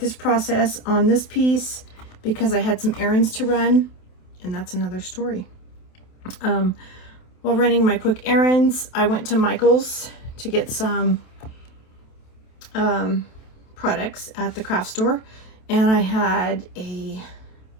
process on this piece because I had some errands to run, and that's another story. While running my quick errands, I went to Michael's to get some products at the craft store, and I had a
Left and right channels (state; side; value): late; right; 27 ms